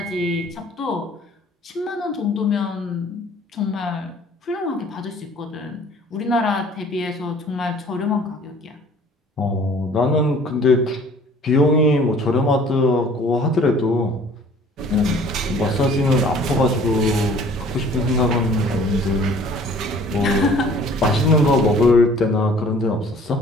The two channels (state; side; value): normal; both; correlation 0.52